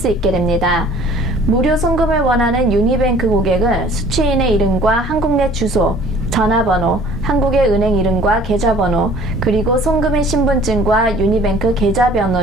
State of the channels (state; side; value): normal; both; correlation 0.52